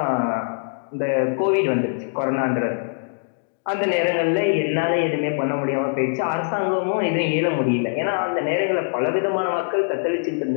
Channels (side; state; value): right; silent; digital silence